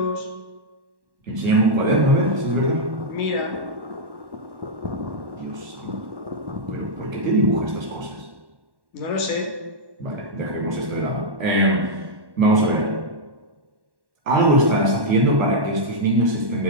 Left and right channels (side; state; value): left; late; 1.1 ms